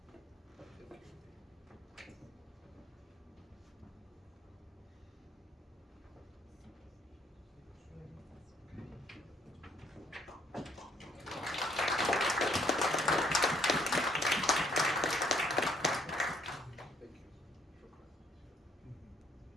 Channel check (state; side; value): normal; both; correlation 0.66